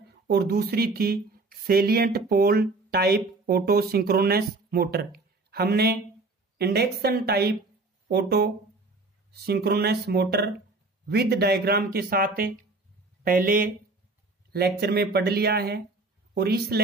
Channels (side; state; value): left; quieter; 3.4 dB